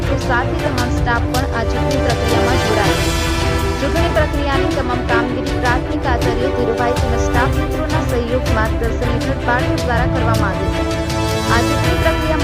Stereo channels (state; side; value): identical; both; correlation 1.00